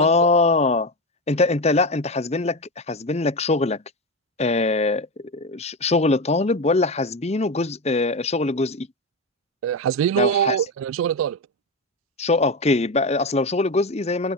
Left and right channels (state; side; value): normal; both; correlation 0.16